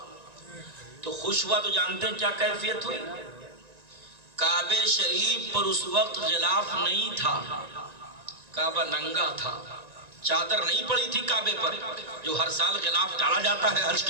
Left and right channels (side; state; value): left; late; 1.9 ms